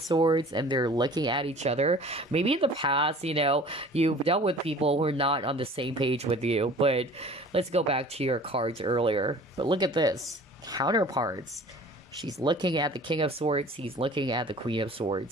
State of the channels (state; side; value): normal; both; correlation 0.46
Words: Swords, and they're looking at each other. Maybe in the past, you've dealt with people who are not on the same page with you, but let's go back to your cards earlier. But look at this. Counterparts. She's looking at the King of Swords. He's looking at the Queen of